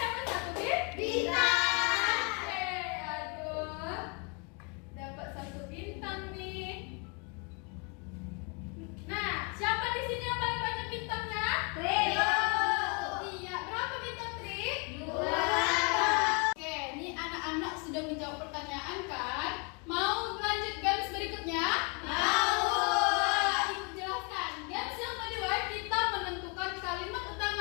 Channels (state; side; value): quieter; right; 33.9 dB